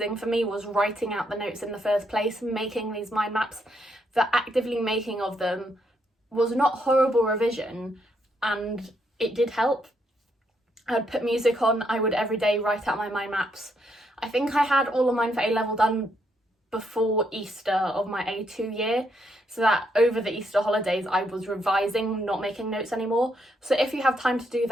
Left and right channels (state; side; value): normal; both; correlation 0.76